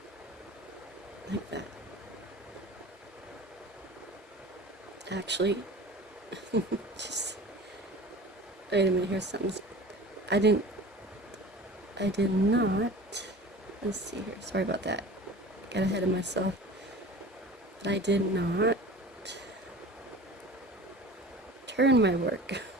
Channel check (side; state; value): both; normal; correlation 0.39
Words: Like that. Actually, just wait a minute, here's something. I did not, let's see here, sorry about that, got ahead of myself, but I did not turn my work.